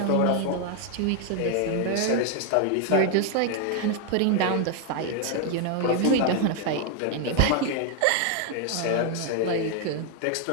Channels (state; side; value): different; both; correlation 0.01